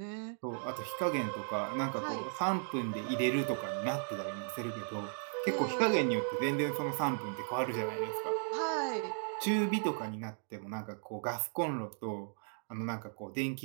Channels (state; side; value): silent; left; 54 dB below the other